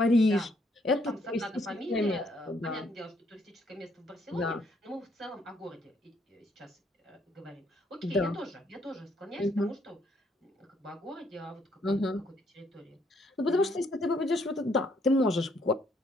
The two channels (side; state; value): both; normal; correlation 0.70